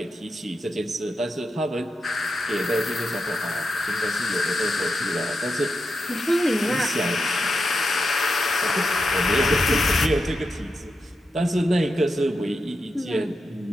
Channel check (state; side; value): normal; both; correlation 0.87